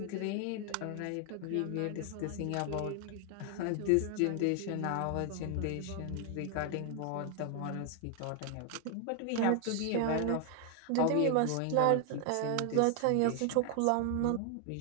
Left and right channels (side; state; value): both; different; correlation 0.00